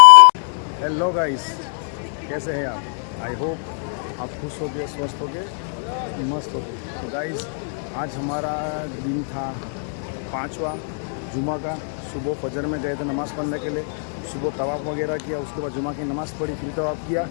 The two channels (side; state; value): right; silent; 62 dB below the other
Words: हेलो गाइस, कैसे हैं आप? आई होप आप खुश हो गए, स्वस्थ हो गए, मस्त हो गए। तो गाइस आज हमारा दिन था 5वां जुमा का। सुबह फजर में गए थे नमाज़ पढ़ने के लिए, सुबह तवाफ़ वगैरह किया, उसके बाद जुमा की नमाज़ पढ़ी, फिर तवाफ़ किया,